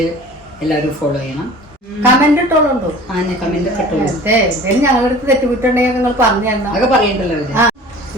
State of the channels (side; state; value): both; normal; correlation 0.44